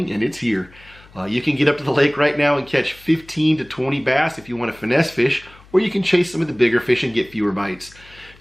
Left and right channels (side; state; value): left; noise; hum, 25 dB below the sound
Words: and it's here. You can get up to the lake right now and catch 15 to 20 bass if you want to finesse fish, or you can chase some of the bigger fish and get fewer bites.